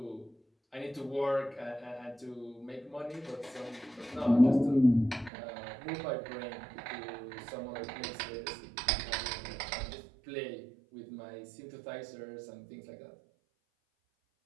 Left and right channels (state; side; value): drops out; left; at 5.3 s